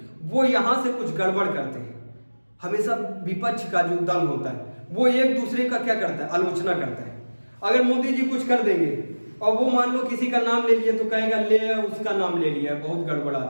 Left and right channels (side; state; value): both; inverted; correlation -1.00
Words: वो यहाँ से कुछ गड़बड़ करते हैं। हमेशा विपक्ष का जो दल होता है वो एक दूसरे का क्या करता है, आलोचना करता है। अगर मोदी जी कुछ कर देंगे और वो मान लो किसी का नाम ले लिए तो कहेगा ले उसका नाम ले लिया, बहुत गड़बड़